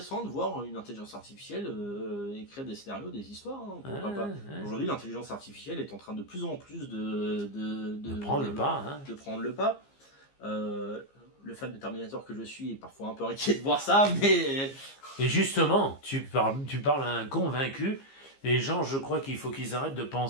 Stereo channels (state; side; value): late; right; 15 ms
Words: de voir une intelligence artificielle écrire des scénarios, des histoires. Pourquoi pas. Aujourd'hui, l'intelligence artificielle est en train de plus en plus de prendre le pas. De prendre le pas. Le fan de Terminator que je suis est parfois un peu inquiet de voir ça, mais... Et justement, tu parles à un convaincu. Les gens, je crois qu'il faut qu'ils arrêtent de